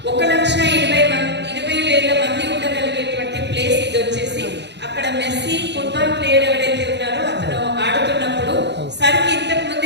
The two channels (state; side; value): late; left; 0.50 ms